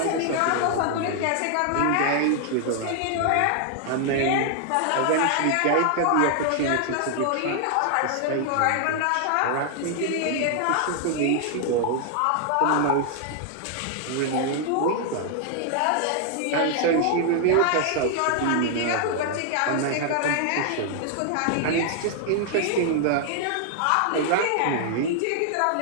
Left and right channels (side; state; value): both; different; correlation 0.00